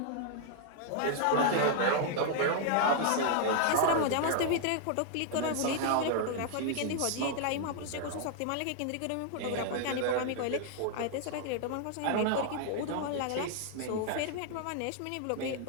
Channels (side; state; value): both; different; correlation 0.00